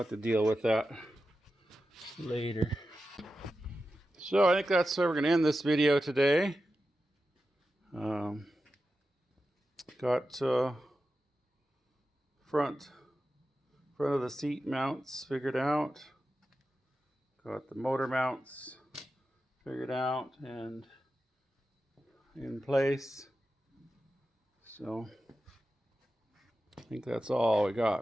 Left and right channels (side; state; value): both; normal; correlation 0.92